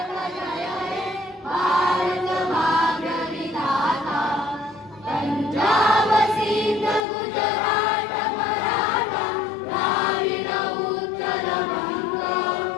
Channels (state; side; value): drops out; right; at 7.0 s